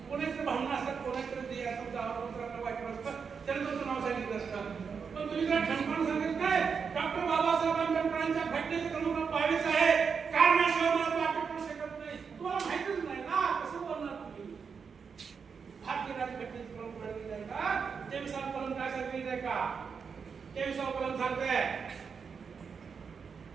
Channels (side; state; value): left; quieter; 6.0 dB